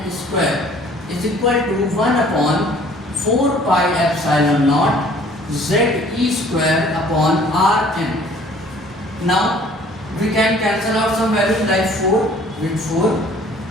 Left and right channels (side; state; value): both; normal; correlation 0.54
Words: square is equal to 1 upon 4 pi epsilon naught Ze square upon Rn. Now we can cancel out some values like 4 with 4,